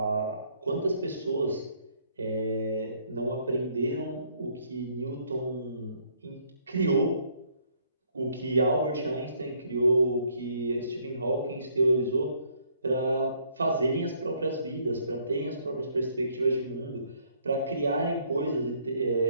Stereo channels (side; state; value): both; inverted; correlation -0.66